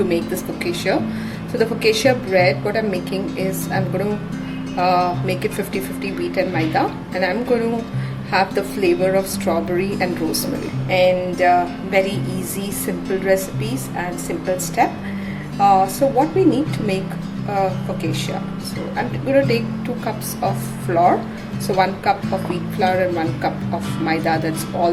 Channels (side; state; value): both; identical; correlation 1.00